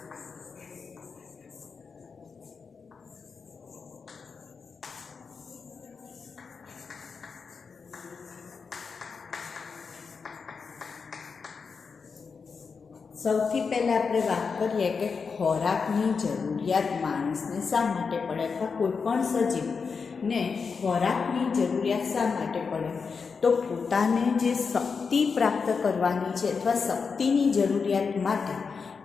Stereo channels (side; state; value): right; quieter; 5.3 dB